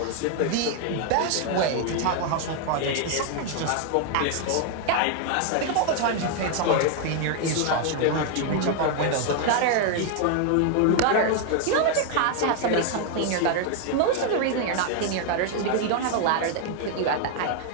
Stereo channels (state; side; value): different; both; correlation 0.00